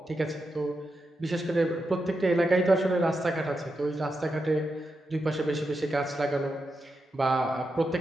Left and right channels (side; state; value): both; normal; correlation 0.87